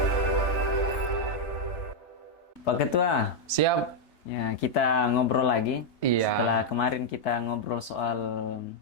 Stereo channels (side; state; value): right; late; 3.3 ms